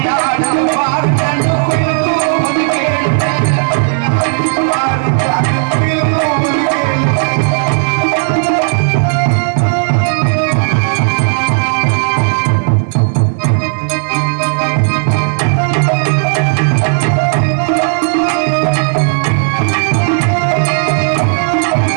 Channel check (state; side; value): silent; left; digital silence